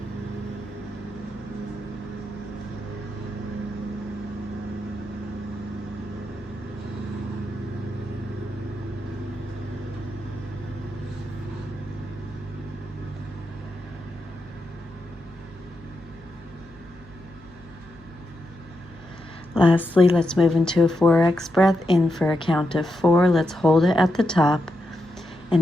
Lastly, let's move into a 4x breath. In for a count of 4. Let's hold it at the top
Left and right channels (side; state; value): both; normal; correlation 0.85